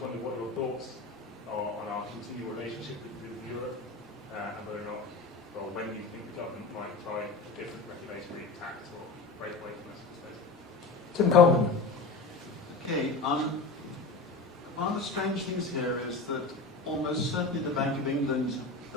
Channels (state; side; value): quieter; right; 3.6 dB